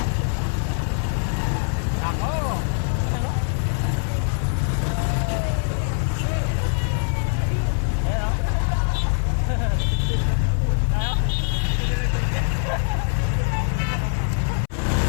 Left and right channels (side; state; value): right; silent; 63 dB below the other